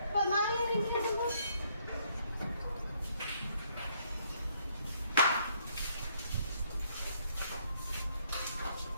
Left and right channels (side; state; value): both; inverted; correlation -0.68